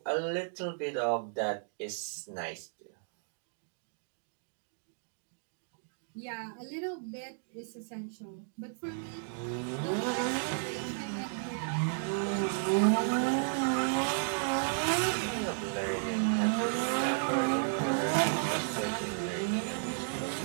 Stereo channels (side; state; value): left; silent; digital silence